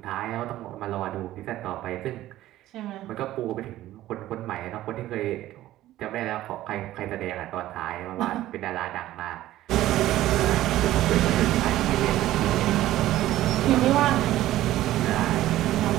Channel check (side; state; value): left; quieter; 14.6 dB